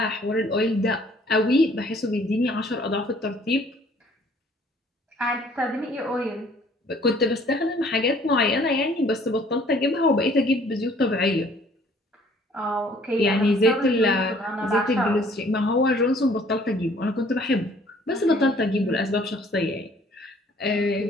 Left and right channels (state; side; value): normal; both; correlation 0.57